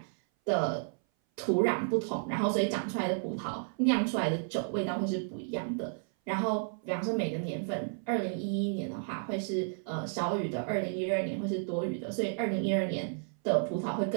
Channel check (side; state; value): left; silent; 56 dB below the other